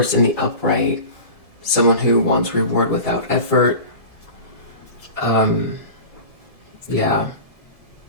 in the upright, someone who wants reward without effort. Yeah.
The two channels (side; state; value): right; late; 1.7 ms